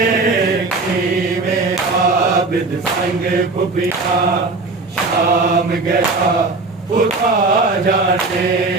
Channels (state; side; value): quieter; left; 3.6 dB